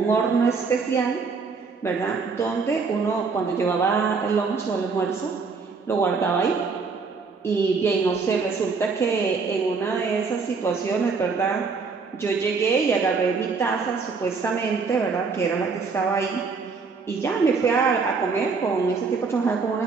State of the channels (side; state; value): left; quieter; 4.8 dB